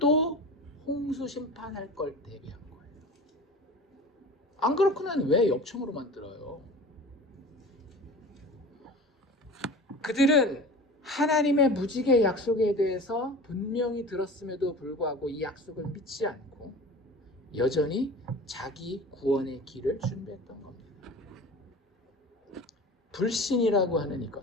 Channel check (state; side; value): normal; both; correlation 0.37